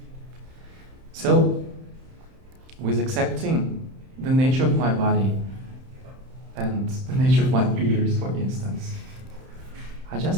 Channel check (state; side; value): late; left; 31 ms